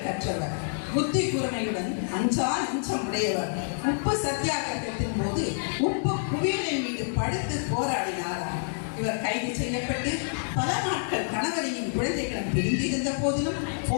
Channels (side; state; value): right; silent; 56 dB below the other